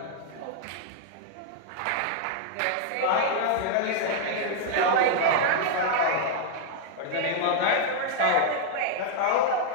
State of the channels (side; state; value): both; different; correlation -0.01